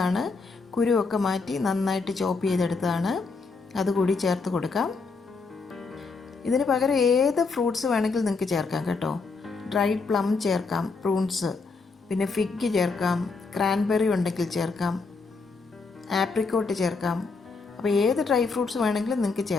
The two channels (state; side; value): quieter; right; 4.3 dB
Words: ആണ്, കുരുവൊക്കെ മാറ്റി നന്നായിട്ട് ചോപ്പ് ചെയ്തെടുത്തതാണ്, അതുകൂടി ചേർത്ത് കൊടുക്കാം. ഇതിന് പകരം ഏത് ഫ്രൂട്ട്സ് വേണമെങ്കിലും നിങ്ങൾക്ക് ചേർക്കാം കേട്ടോ. ഡ്രൈഡ് പ്ലം ചേർക്കാം, പ്രൂൺസ്, പിന്നെ ഫിഗ് ചേർക്കാം, ക്രാൻബെറി ഉണ്ടെങ്കിൽ ചേർക്കാം, ആപ്രിക്കോട്ട് ചേർക്കാം. അപ്പോൾ ഏത് ഡ്രൈ ഫ്രൂട്ട്സ് വേണമെങ്കിലും നിങ്ങൾക്ക്